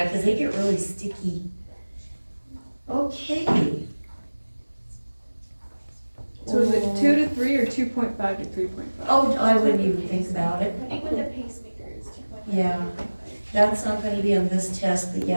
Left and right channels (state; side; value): inverted; both; correlation -1.00